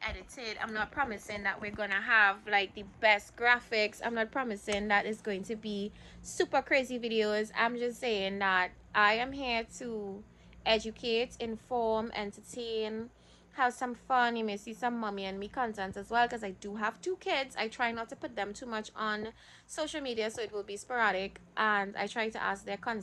I'm not promising that we're gonna have like the best graphics. I'm not promising that it's going to be super crazy videos. I'm just saying that I am here to educate, inform, entertain, have some fun. You may see some mommy and me content as well, because I do have 2 kids. I try not to put them too much on social media, so it will be sporadic, and I try to ask their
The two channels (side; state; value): both; identical; correlation 1.00